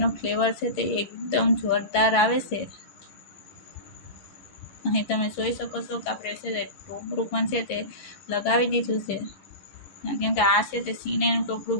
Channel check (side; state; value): right; late; 11 ms